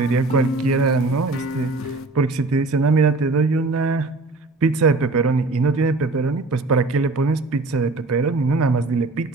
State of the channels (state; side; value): quieter; left; 3.3 dB